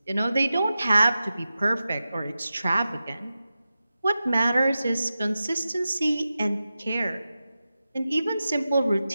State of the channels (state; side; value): inverted; both; correlation -0.93